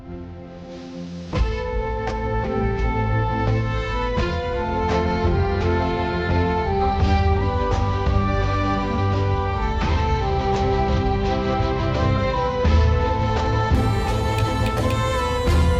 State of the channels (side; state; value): both; identical; correlation 1.00